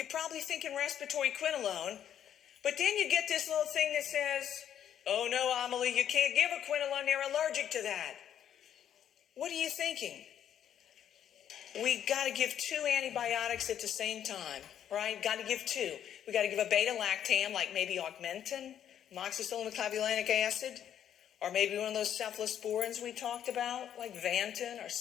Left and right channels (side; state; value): right; quieter; 9.9 dB